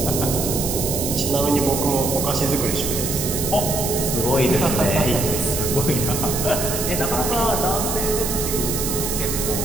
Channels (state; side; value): noise; right; hiss, 3 dB below the sound